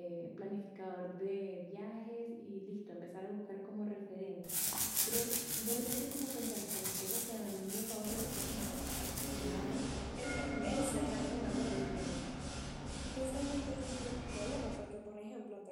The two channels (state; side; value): identical; both; correlation 1.00